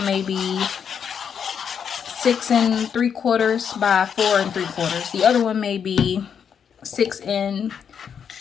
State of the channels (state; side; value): quieter; right; 7.5 dB